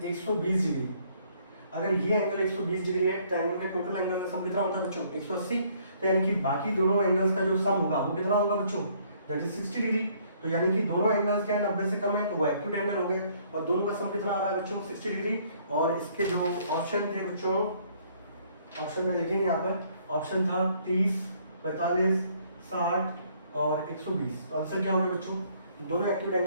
120 डिग्री। अगर ये एंगल 120 डिग्री है, ट्रायंगल के टोटल एंगल का सम कितना होता है बच्चों 180, तो यानी कि बाकी दोनों एंगल्स का जो सम होगा वो कितना होगा बच्चों, दैट इज 60 डिग्री। तो यानी कि दोनों एंगल्स क्या है 90 से कम है, तो वो एक्यूट एंगल हो गए, और दोनों का सम कितना आ रहा है बच्चों 60 डिग्री। और इसके जो ऑप्शन थे बच्चों, ऑप्शन में देखेंगे यहाँ पर ऑप्शन था 30, 45, 60 और 120। तो आंसर क्या हो गया बच्चों, दोनों एक्यूट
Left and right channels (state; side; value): inverted; both; correlation -0.64